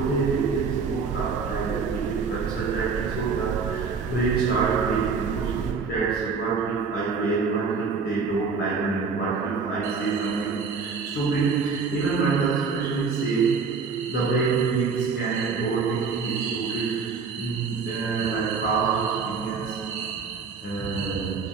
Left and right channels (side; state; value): left; quieter; 5.1 dB